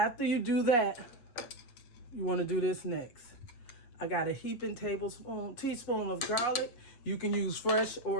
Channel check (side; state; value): right; late; 8.5 ms